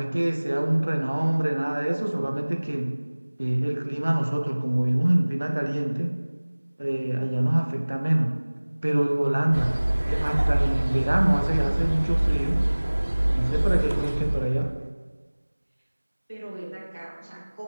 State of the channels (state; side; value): inverted; both; correlation -1.00